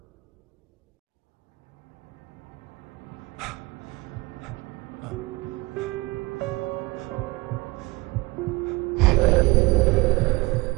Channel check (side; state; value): left; quieter; 22.6 dB